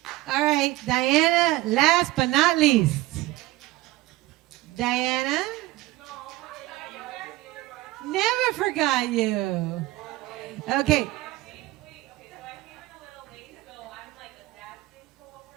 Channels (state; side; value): quieter; left; 18.2 dB